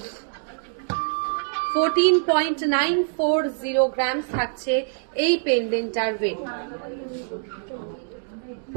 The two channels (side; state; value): left; silent; digital silence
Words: 14.940 গ্রামস থাকছে এই পেন্ডেন্টটার ওয়েট।